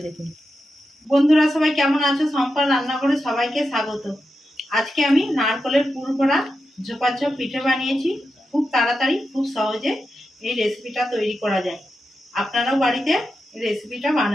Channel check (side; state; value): both; normal; correlation 0.89